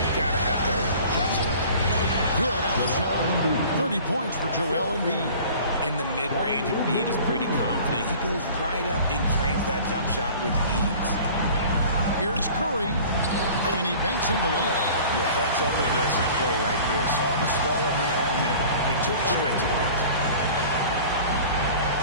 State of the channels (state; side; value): inverted; both; correlation -0.44